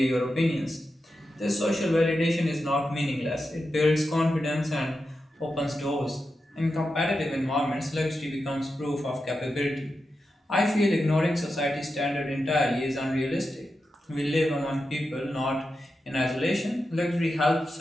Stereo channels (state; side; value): normal; both; correlation 0.89